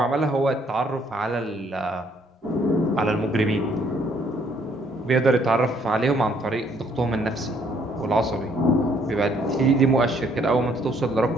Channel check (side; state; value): both; normal; correlation 0.65